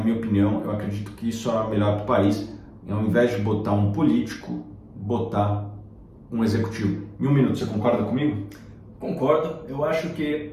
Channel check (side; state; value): both; identical; correlation 1.00